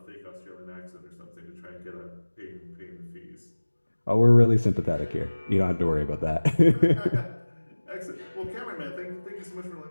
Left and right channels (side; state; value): both; inverted; correlation -1.00